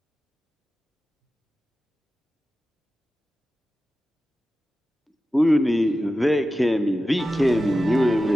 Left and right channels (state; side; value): normal; both; correlation 0.93